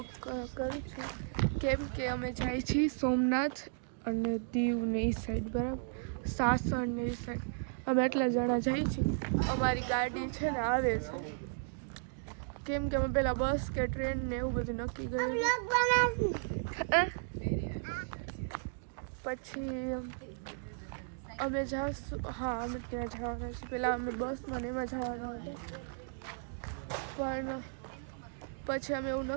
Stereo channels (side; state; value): left; silent; digital silence